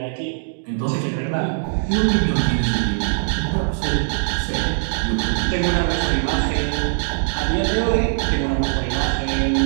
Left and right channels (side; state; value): left; silent; digital silence